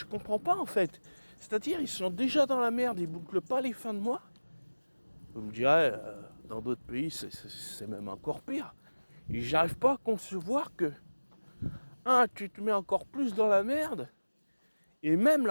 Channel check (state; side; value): inverted; both; correlation -1.00